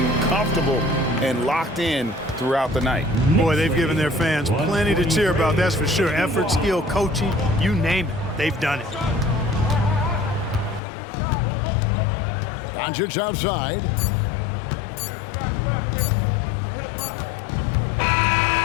comfortable and locked in throughout the night. Boy, they've given their fans plenty to cheer about, that's for sure. Effort, skill, coaching, you name it, they've done it. Doncic outside.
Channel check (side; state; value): right; drops out; at 10.8 s